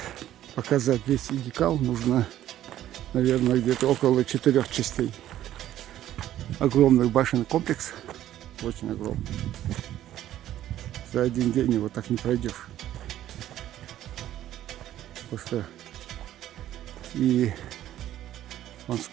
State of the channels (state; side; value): quieter; left; 12.6 dB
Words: показать весь Гикал, нужно, наверное, где-то около 4 частей. Огромный башенный комплекс, очень огромный. За один день его так не пройдешь. Потому что и вон